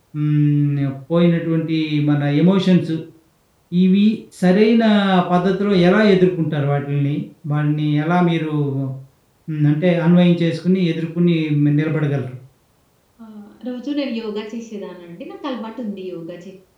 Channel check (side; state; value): both; identical; correlation 1.00